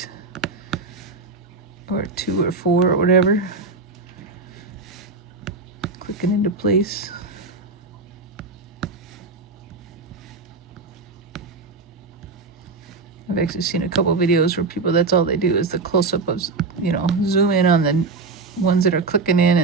Or 2 or 4 or whatever. Clicking into place. I've actually seen a couple videos where people, that's all they do is the close-up of, you know, zoom in on the ones that are clicking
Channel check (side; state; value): left; quieter; 4.0 dB